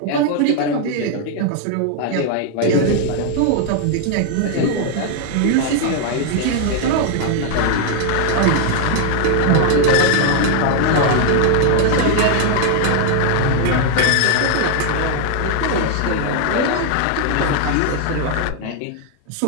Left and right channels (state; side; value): different; both; correlation 0.00